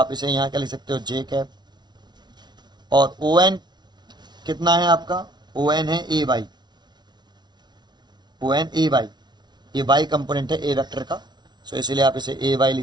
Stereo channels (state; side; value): late; left; 0.20 ms